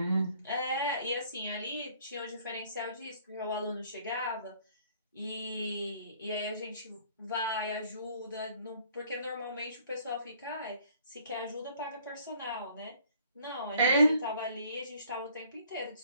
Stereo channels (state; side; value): inverted; both; correlation -0.58